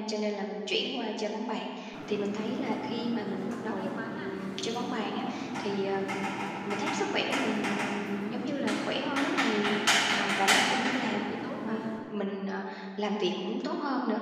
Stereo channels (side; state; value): both; identical; correlation 1.00